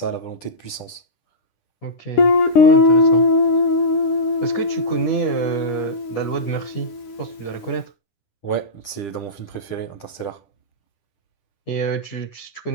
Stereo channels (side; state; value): right; late; 10 ms